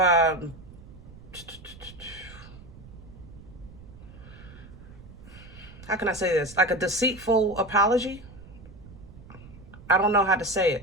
can I say this? Like a deceitful apology. I don't know how to say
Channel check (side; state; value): right; noise; rumble, 18 dB below the sound